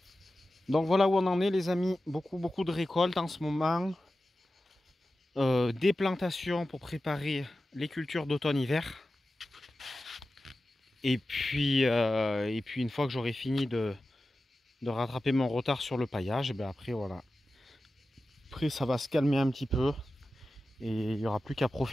Donc voilà où on en est les amis, beaucoup de récoltes en ce moment. Des plantations pour préparer les cultures d'automne-hiver. Et puis une fois que j'aurai fini de rattraper mon retard sur le paillage, après voilà. Après ça va se calmer un petit peu. Et il n'y aura plus qu'à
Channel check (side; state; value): both; normal; correlation 0.94